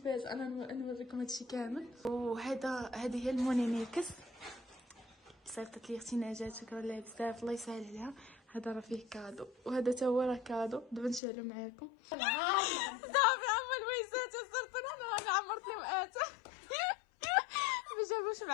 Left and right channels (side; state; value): right; drops out; at 11.2 s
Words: انا نوريكم هادشي كامل. هذه هي المونيميكس، صيفطت لي اختي نجاة، شكرا لها بزاف، الله يسهل عليها. هذا راه فيه كادو، وهذا تا هو راه كادو. دابا نشعلو معاكم. صافي عمر الويسات صرت انا عمرت لهم اتى. ما جابوش